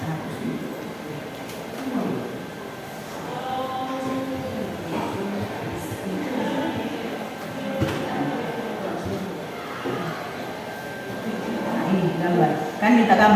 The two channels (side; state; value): both; identical; correlation 1.00